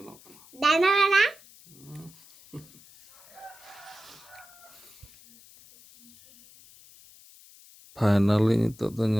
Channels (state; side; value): noise; left; hiss, 24 dB below the sound